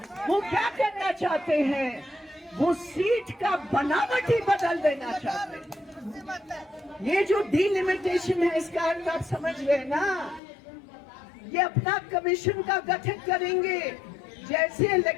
वो क्या करना चाहते हैं? वो सीट का बनावट ही बदल देना चाहते हैं। ये जो डिलिमिटेशन है, इसका अर्थ आप समझ रहे ना? ये अपना कमीशन का गठन करेंगे। जैसे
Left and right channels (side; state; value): right; drops out; at 10.4 s